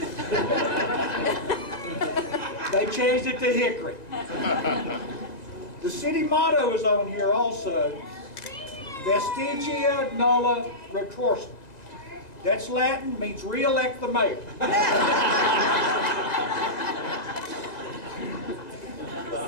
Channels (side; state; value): right; late; 1.9 ms